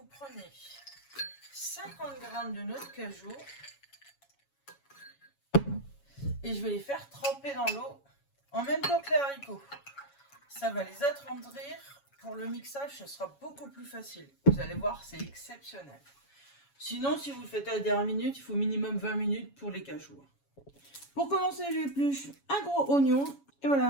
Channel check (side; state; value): right; late; 7.2 ms